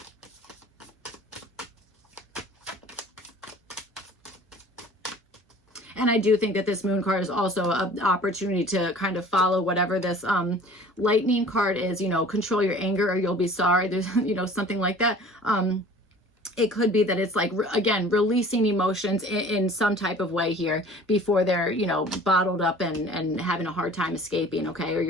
And I do think that this moon card is also an opportunity to kind of follow whatever this lightning card is, you know, control your anger or you'll be sorry. There's, you know, something like that. It could be that it's like, again, releasing emotions in some type of way here before they're, you know, bottled up and having a hard time escaping, okay? Or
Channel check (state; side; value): normal; both; correlation 0.47